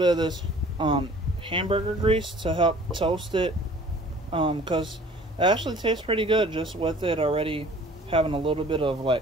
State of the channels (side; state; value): both; normal; correlation 0.51